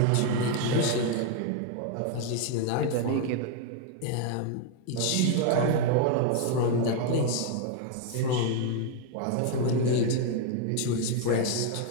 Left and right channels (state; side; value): different; both; correlation 0.00